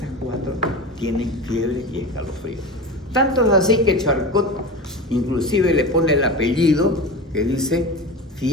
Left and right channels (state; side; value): normal; both; correlation 0.28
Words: 4 tienen fiebre y escalofrío. Tanto es así que Charcot inclusive le pone el apellido que dice